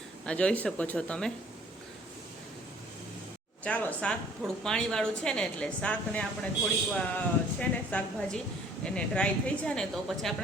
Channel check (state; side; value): normal; both; correlation 0.56